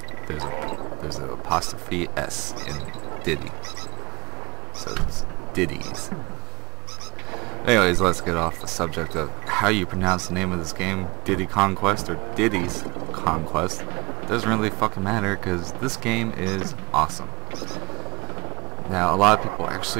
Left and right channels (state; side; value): quieter; left; 25.5 dB